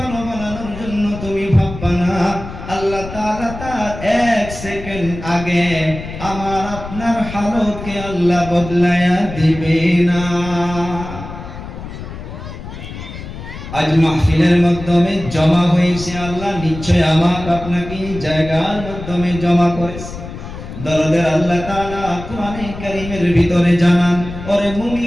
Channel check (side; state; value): left; noise; rumble, 11 dB below the sound